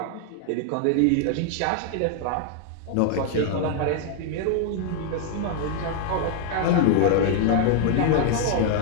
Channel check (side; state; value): both; different; correlation 0.00